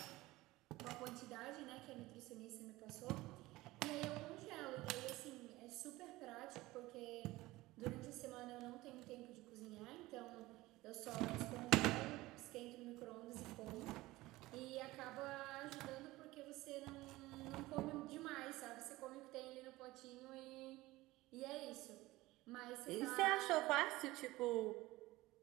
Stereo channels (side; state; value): left; quieter; 18.9 dB